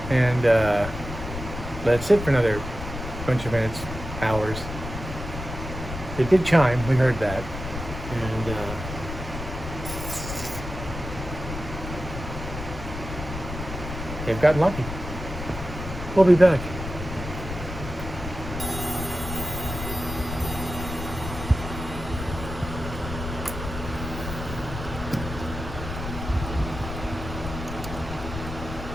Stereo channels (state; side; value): noise; left; rumble, 8 dB below the sound